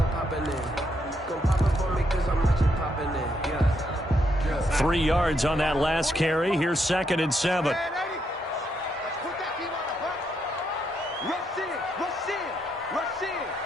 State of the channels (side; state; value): both; normal; correlation 0.77